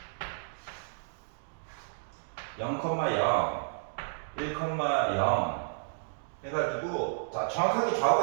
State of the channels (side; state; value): left; silent; digital silence